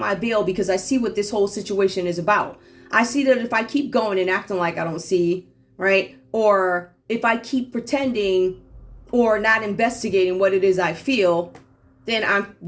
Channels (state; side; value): identical; both; correlation 1.00